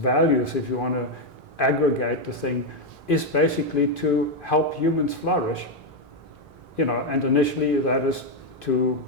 if you want to aggregate the thing, is basically to help humans flourish. And initially that is to,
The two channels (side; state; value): both; normal; correlation 0.04